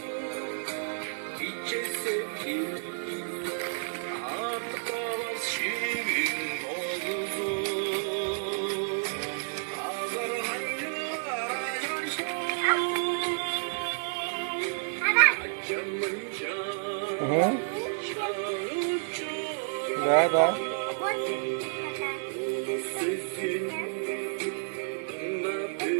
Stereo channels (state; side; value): silent; left; 58 dB below the other